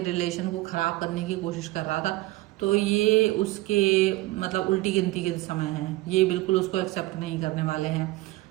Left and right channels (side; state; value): left; quieter; 18.9 dB